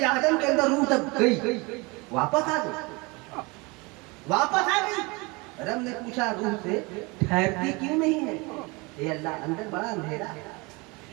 आदम के अंदर रूह तक गई, वापस आ गई, वापस आ गई। रब ने पूछा रूह से, ठहरती क्यों नहीं है? ये अल्लाह, अंदर बड़ा अंधेरा है,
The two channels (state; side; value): quieter; left; 26.5 dB